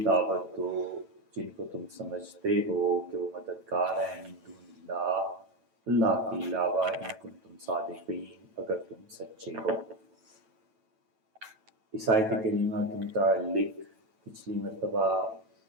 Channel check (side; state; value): left; late; 9.1 ms